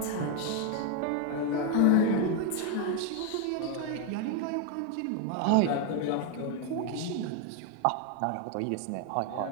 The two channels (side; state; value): both; different; correlation 0.01